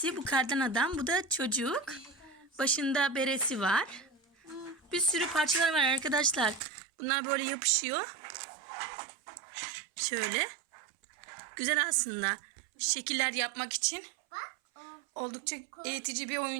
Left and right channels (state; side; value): drops out; left; at 6.6 s